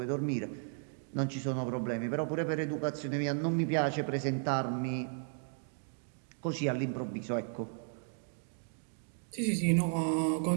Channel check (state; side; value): silent; left; 55 dB below the other